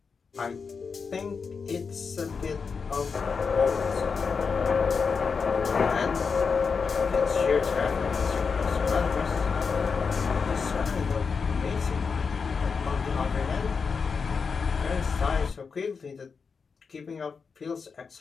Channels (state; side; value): quieter; right; 5.4 dB